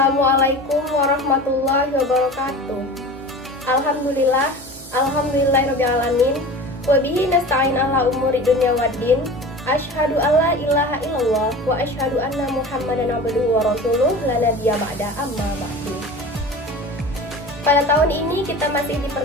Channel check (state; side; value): normal; both; correlation 0.36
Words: warahmatullahi wabarakatuh. Alhamdulillahirrabbilalamin. Wabihi nasta'in ala umuri dunya waddin. Asyhadu alla ilaha illallah wa asyhadu anna Muhammadan abduhu wa rasuluh la nabiyya ba'da amma ba'du. Pada tahun ini kita masih